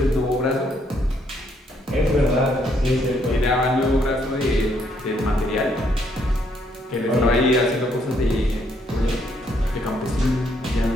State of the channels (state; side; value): normal; both; correlation 0.71